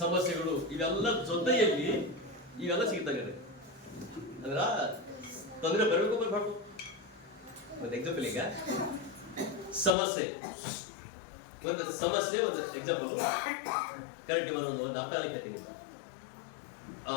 ಸಮಸ್ಯೆಗಳು, ಇವೆಲ್ಲ ಜೊತೆಯಲ್ಲಿ ಇವೆಲ್ಲ ಸಿಗ್ತವೆ. ಅಂದ್ರ ತೊಂದರೆ ಬರಬೇಕು ಬರ್ಬಾರ್ದು. ಒಂದು ಎಕ್ಸಾಂಪಲ್, ಈಗ ಸಮಸ್ಯೆ, ಒಂದು ಎಕ್ಸಾಂಪಲ್ ಕರೆಕ್ಟ್ ಒಂದು ಅರ್ಥ ಹೇಳ್ತೀನಿ.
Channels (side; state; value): right; drops out; at 10.0 s